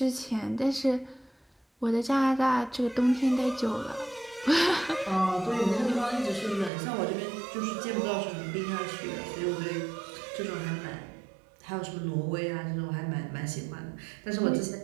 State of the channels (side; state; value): left; drops out; at 6.7 s